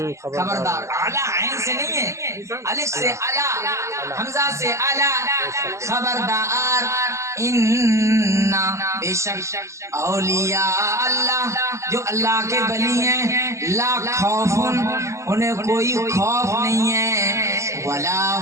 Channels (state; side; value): late; left; 0.14 ms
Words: خبردار، اعلیٰ عین سے نہیں ہے، الف سے الا، حمزہ سے الا، خبردار، ان بے شک اولیاء اللہ جو اللہ کے ولی ہیں لا خوف انہیں کوئی خوف نہیں ہے، ولا